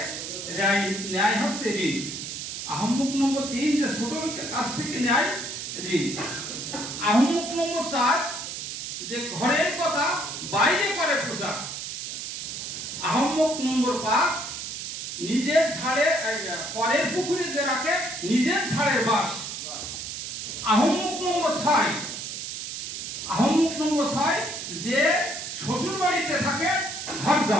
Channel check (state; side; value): noise; right; hiss, 6 dB below the sound